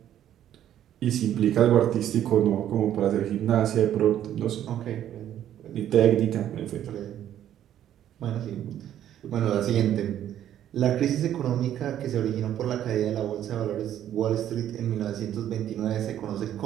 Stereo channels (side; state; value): left; quieter; 11.1 dB